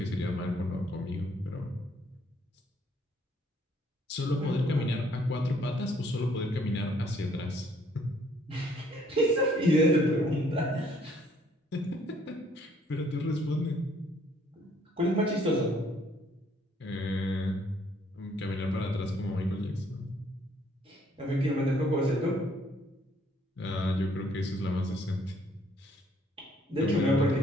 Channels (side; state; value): both; normal; correlation 0.64